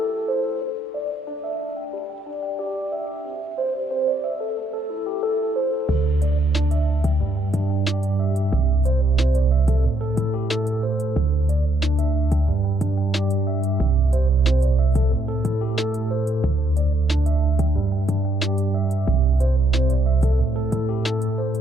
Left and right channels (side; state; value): both; normal; correlation 0.73